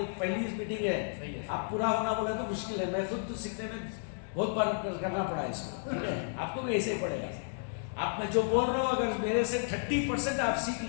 पहली मीटिंग है, आप पूरा होना बोला तो मुश्किल है। मैं खुद तो सीखने में बहुत बार करना पड़ा इसको, ठीक है? आपको भी ऐसे ही पड़ेगा। आप मैं जो बोल रहा हूँ, अगर मेरे से 30% आप सीख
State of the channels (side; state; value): right; silent; digital silence